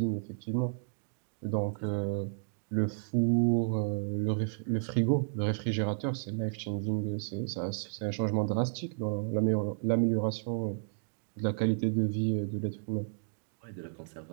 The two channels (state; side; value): silent; left; digital silence